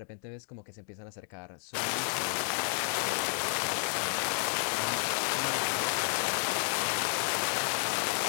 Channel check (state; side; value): silent; right; digital silence